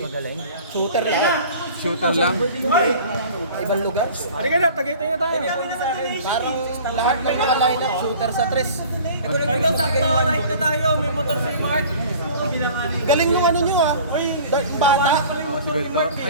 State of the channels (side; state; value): both; inverted; correlation -0.45